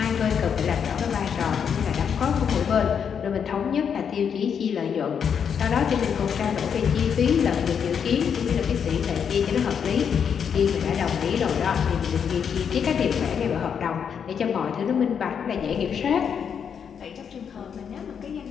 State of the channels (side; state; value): right; quieter; 7.4 dB